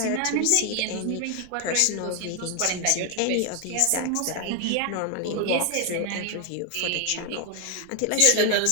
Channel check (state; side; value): different; both; correlation 0.00